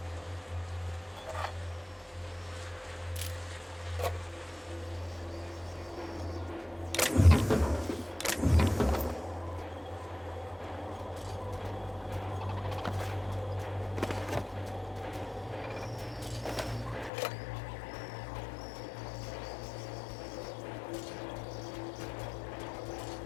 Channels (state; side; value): drops out; right; at 17.1 s